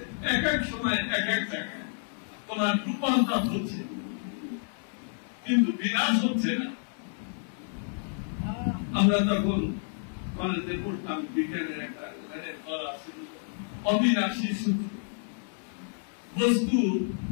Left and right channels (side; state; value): right; silent; 58 dB below the other